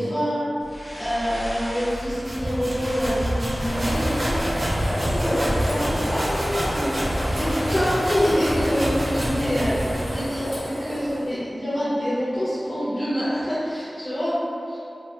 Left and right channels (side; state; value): both; normal; correlation 0.97